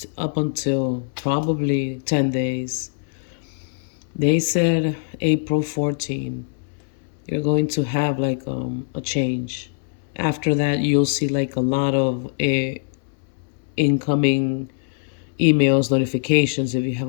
up until probably 10 days. They said April 14, you're going to have like a change. After that, you'll see like a lot of incoming emails, notifications. If you have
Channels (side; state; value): right; silent; 64 dB below the other